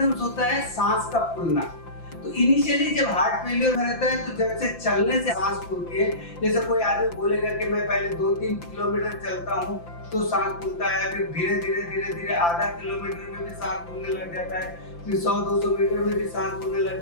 होता है सांस का फूलना। तो इनिशियली जब हार्ट फेलियर में रहता है तो जैसे चलने से सांस फूलती है, जैसे कोई आदमी बोलेगा कि मैं पहले 2-3 किलोमीटर चलता हूँ तो सांस फूलता है, फिर धीरे धीरे आधा किलोमीटर में भी सांस फूलने लग जाता है, फिर 100-200 मीटर में भी सांस फूलने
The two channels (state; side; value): late; right; 5.9 ms